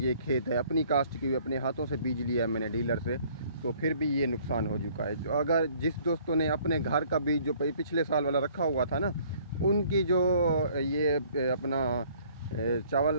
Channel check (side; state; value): both; inverted; correlation -0.58